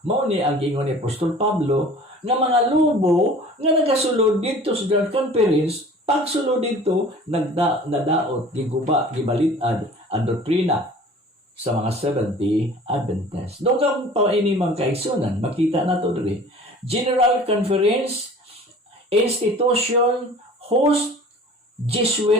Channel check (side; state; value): both; normal; correlation 0.45